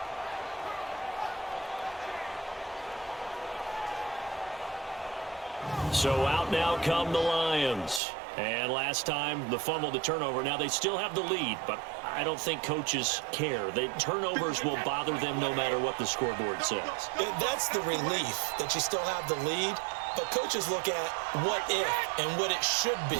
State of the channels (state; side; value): drops out; left; at 8.0 s